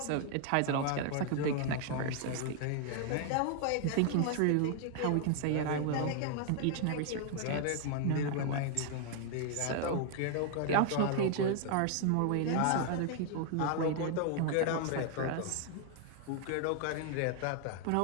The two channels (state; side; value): different; both; correlation 0.00